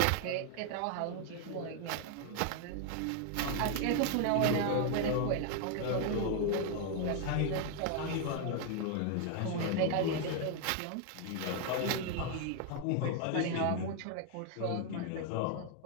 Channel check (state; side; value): different; both; correlation 0.00